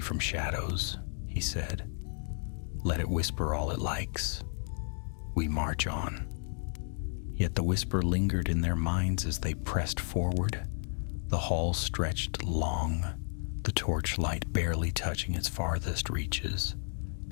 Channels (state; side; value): silent; right; 56 dB below the other